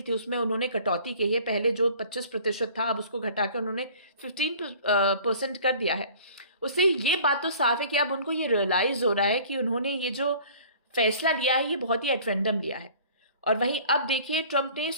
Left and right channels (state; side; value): inverted; both; correlation -0.48